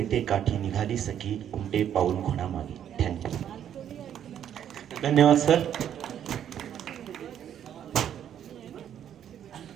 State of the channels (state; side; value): quieter; left; 9.8 dB